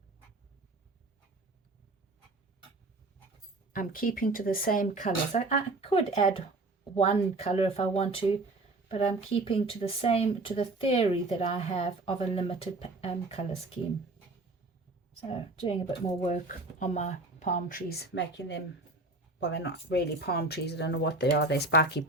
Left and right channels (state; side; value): quieter; left; 3.1 dB